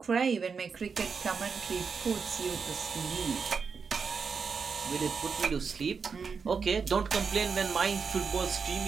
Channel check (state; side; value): quieter; left; 5.6 dB